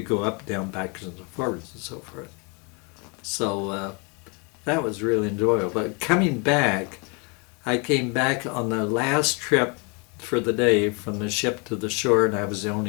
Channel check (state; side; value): quieter; right; 32.5 dB